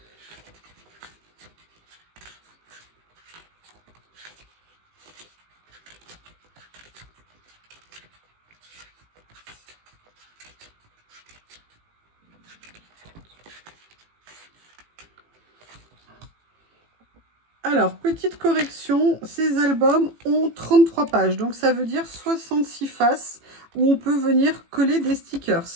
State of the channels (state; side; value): late; left; 18 ms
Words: Alors, petite correction, ces albums ont 33 pages, donc ça veut dire 66 faces où on peut venir coller des stickers.